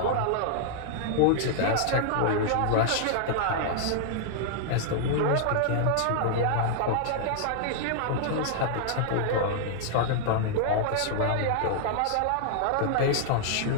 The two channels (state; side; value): different; both; correlation -0.01